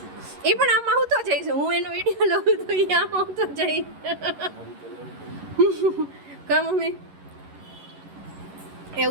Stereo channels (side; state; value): left; late; 11 ms